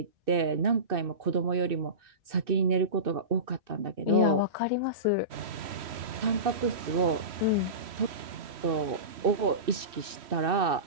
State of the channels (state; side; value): late; left; 2.6 ms